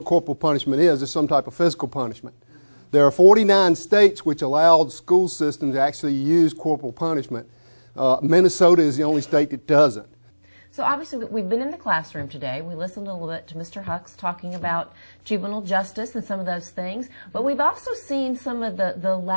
corporal punishment is. It's some type of physical punishment. There are 49 states which allow the school system to actually use corporal punishment. Minnesota is the only state that doesn't. So obviously we've been in the classroom today. We listened a little bit to Mr. Hucks talking about juvenile justice and some of those things, but we've also seen some of the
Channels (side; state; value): both; inverted; correlation -1.00